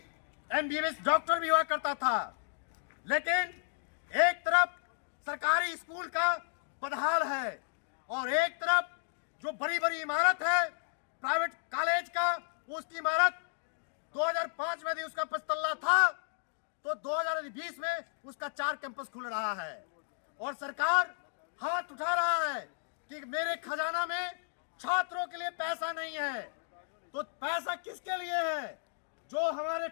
एमबीबीएस डॉक्टर भी हुआ करता था। लेकिन एक तरफ सरकारी स्कूल का बदहाल है और एक तरफ जो बड़ी बड़ी इमारत है प्राइवेट कॉलेज का, उसकी इमारत 2005 में भी उसका 5 तल्ला था तो 2020 में उसका 4 कैंपस खुल रहा है और सरकार हाथ उठा रहा है कि मेरे खजाना में छात्रों के लिए पैसा नहीं है। तो पैसा किसके लिए है? जो हमारे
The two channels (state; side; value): silent; right; digital silence